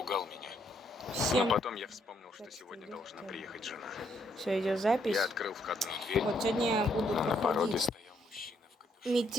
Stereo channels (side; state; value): both; normal; correlation 0.72